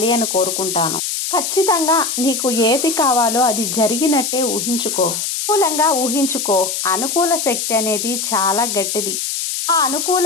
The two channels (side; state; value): left; noise; hiss, 2 dB below the sound